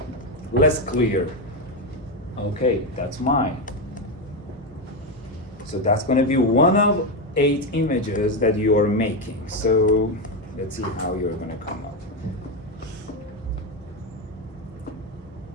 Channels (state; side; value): normal; both; correlation 0.10